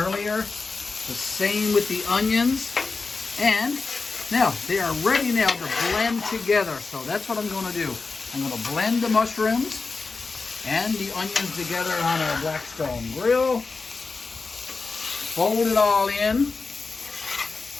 The same with the onions. And now they are ready now to blend together. So that's what I'm going to do. I'm going to blend the mushrooms and the onions together on our Blackstone Grill. Fold it all in.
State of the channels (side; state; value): right; quieter; 4.2 dB